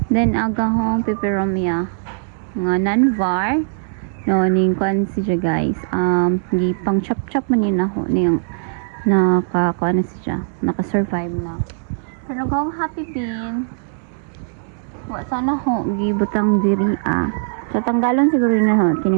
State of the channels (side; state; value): left; silent; 65 dB below the other